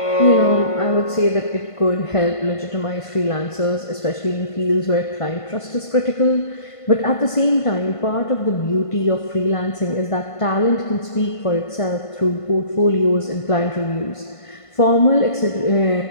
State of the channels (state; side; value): late; right; 1.5 ms